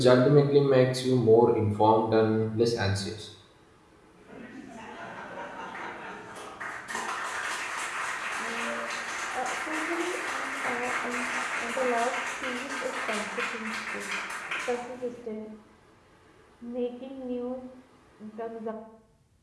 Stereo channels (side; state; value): both; identical; correlation 1.00